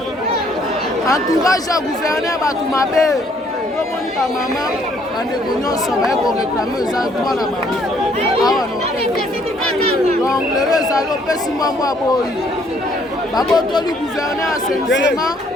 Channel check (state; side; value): normal; both; correlation 0.65